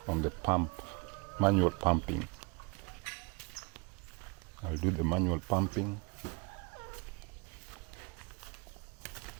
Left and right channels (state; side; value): quieter; left; 29.6 dB